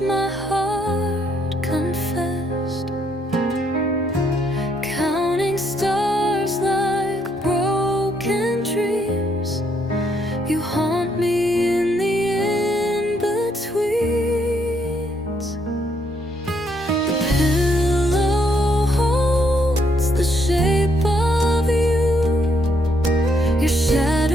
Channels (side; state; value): both; normal; correlation 0.72